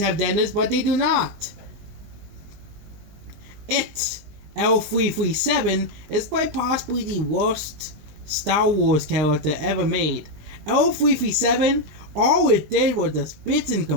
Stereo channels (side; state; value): left; late; 20 ms